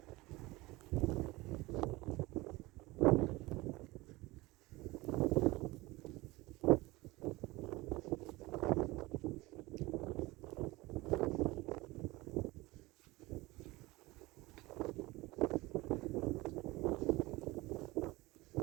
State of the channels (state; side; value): quieter; left; 21.0 dB